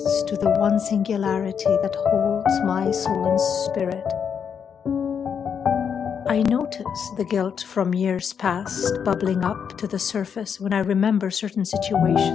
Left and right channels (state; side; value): quieter; right; 7.3 dB